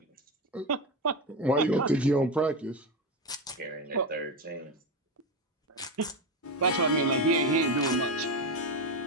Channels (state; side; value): normal; both; correlation 0.16